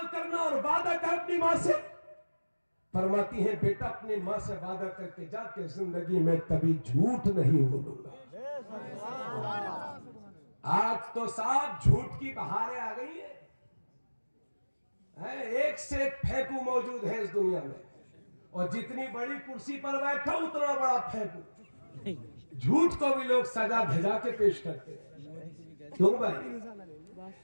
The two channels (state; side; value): inverted; both; correlation -1.00